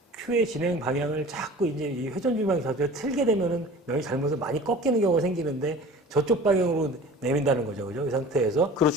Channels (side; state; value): both; normal; correlation 0.42